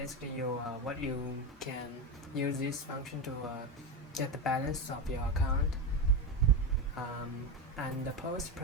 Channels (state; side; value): normal; both; correlation 0.16